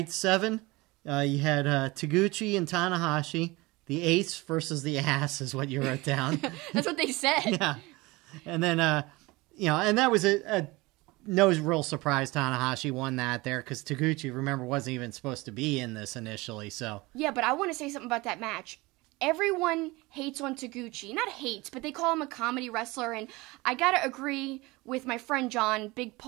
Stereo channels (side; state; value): left; quieter; 22.5 dB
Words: 7, you had Taguchi and Tanahashi. The ace versus the ass is what you wrote down. That's what they said. Yeah. And then, and that was no real surprise Tanahashi won that there because Taguchi, remember, wasn't even supposed to be in this initially. So yeah, but I want to say something about that match. Everyone hates on Taguchi. Not hates, but they call him a comedy wrestler, and I gotta agree with my friend John, Big